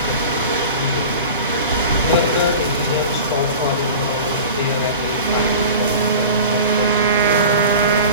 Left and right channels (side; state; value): both; inverted; correlation -0.36